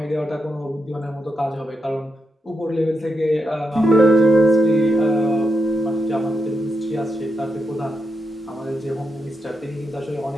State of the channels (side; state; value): both; normal; correlation 0.84